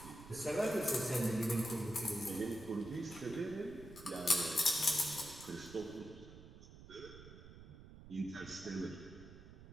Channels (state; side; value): noise; right; rumble, 16 dB below the sound